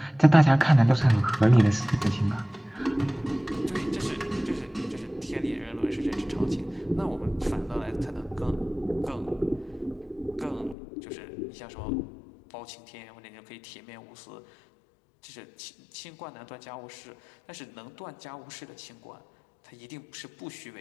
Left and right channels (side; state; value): right; drops out; at 10.8 s